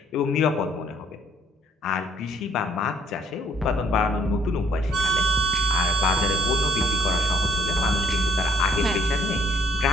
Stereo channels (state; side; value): normal; both; correlation 0.65